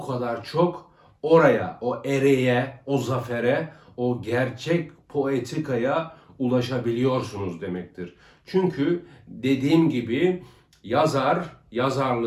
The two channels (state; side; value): identical; both; correlation 1.00